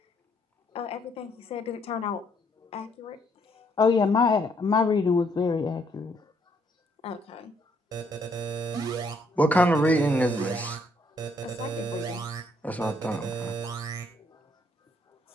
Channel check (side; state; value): both; normal; correlation 0.69